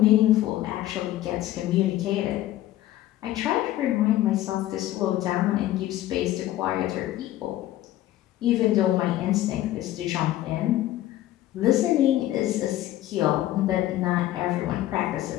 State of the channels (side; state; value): right; quieter; 14.4 dB